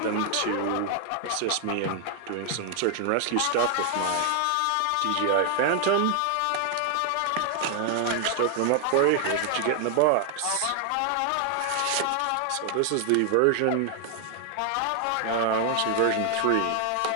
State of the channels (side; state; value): both; different; correlation 0.00